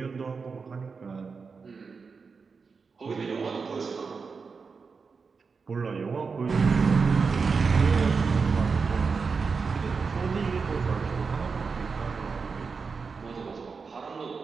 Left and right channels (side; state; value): left; quieter; 5.0 dB